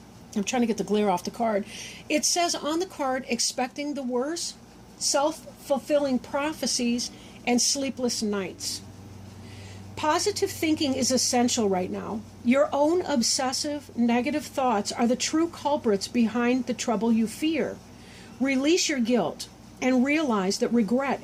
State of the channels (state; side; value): identical; both; correlation 1.00